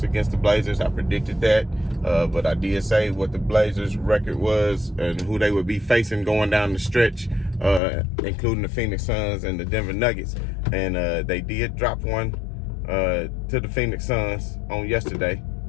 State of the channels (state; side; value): drops out; right; at 7.8 s